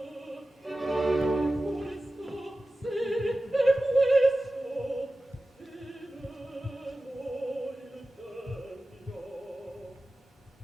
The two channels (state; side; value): normal; both; correlation 0.95